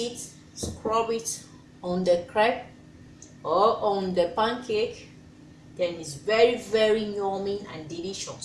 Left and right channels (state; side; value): identical; both; correlation 1.00